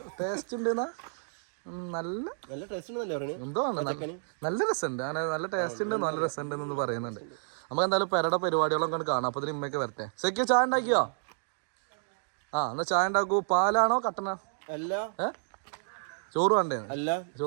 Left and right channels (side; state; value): left; silent; digital silence